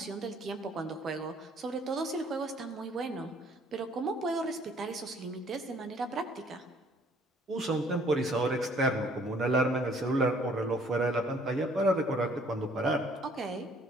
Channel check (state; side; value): normal; both; correlation 0.60